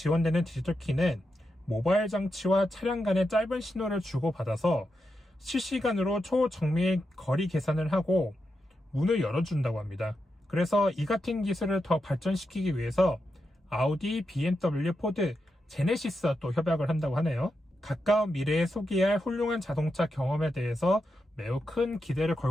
디지털 키는 모바일 장치와 차량 간의 짧은 신호를 주고받아서 실시간으로 초정밀 거리 계산을 하고 문을 열어준다고 합니다. 그래서 이 같은 기술을 더 발전시키기 위해서 아우디, BMW, 포드, 제네시스와 또 협약을 한다고 하네요. 가까운 미래에 소개할 훌륭한 자동차 경험에 대해서 매우 큰 기대를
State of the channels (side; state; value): both; normal; correlation 0.86